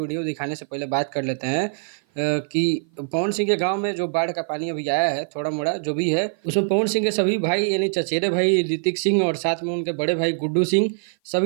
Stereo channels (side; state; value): left; silent; 55 dB below the other